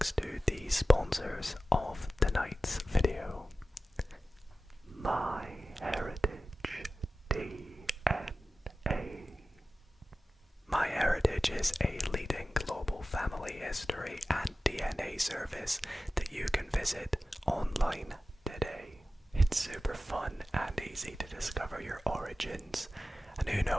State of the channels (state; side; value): normal; both; correlation 0.95